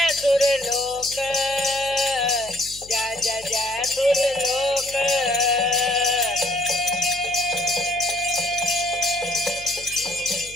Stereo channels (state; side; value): noise; left; hum, 21 dB below the sound